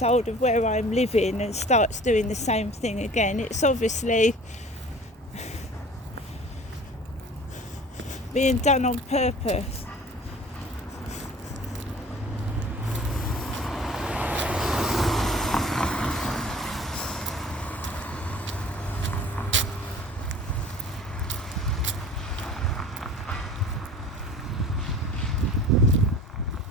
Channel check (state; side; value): normal; both; correlation 0.45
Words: of where I'm living and starts doing the same thing again, it's obviously being done on purpose.